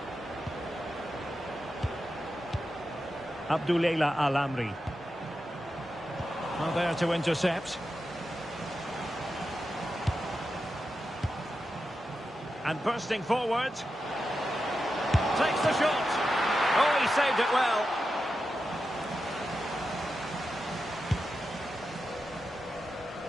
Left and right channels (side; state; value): both; normal; correlation 0.89